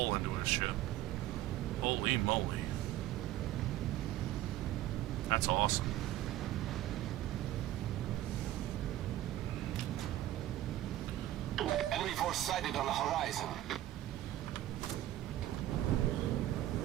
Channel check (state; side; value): quieter; left; 14.2 dB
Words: into his ship. Holy moly. That's awesome. Enemy force sighted on the horizon.